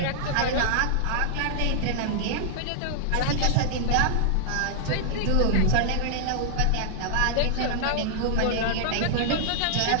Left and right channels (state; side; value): different; both; correlation -0.01